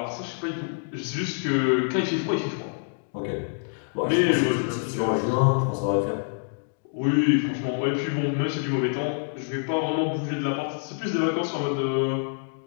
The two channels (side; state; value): right; silent; digital silence